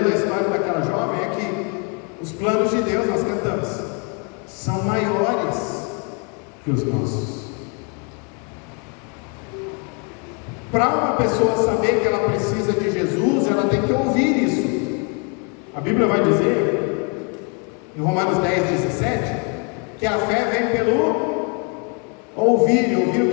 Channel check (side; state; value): right; quieter; 36.1 dB